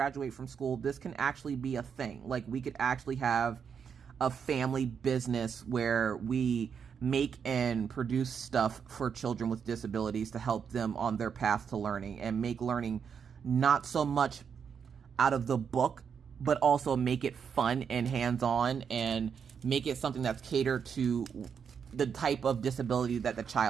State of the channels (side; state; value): left; quieter; 6.9 dB